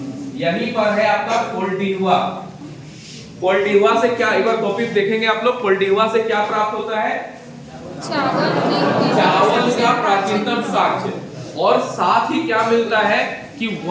यहीं पर है आपका कोल्डिहवा। कोल्डिहवा से क्या, एक बार कॉपी देखेंगे आप लोग, कोल्डिहवा से क्या प्राप्त होता है? चावल का प्राचीनतम साक्ष्य, और साथ ही क्या मिलता है कि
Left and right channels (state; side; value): identical; both; correlation 1.00